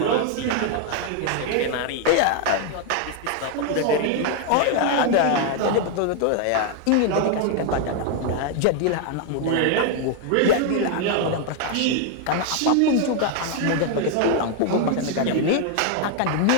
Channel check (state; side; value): different; both; correlation 0.00